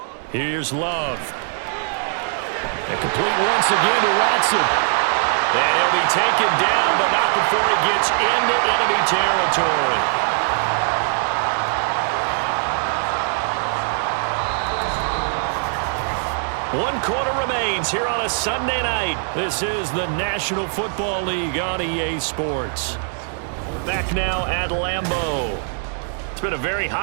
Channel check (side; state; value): left; silent; 62 dB below the other